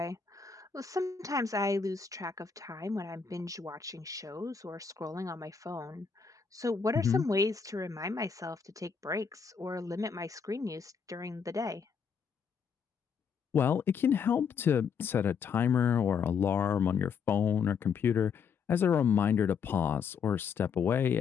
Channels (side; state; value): right; quieter; 6.3 dB